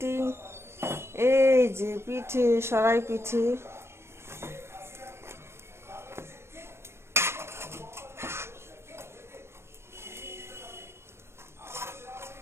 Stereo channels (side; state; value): left; late; 0.12 ms